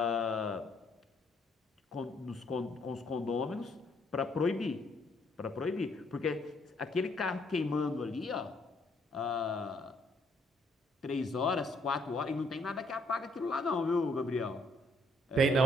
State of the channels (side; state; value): both; normal; correlation 0.69